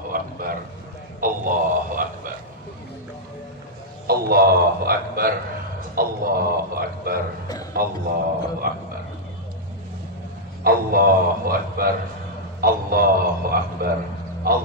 Akbar, Allahu Akbar, Allahu Akbar, Allahu Akbar, Allahu Akbar, Allahu Akbar, Allahu Akbar,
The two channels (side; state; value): both; normal; correlation -0.06